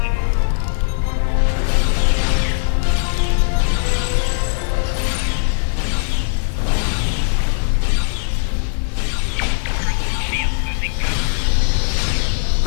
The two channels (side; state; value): right; silent; 67 dB below the other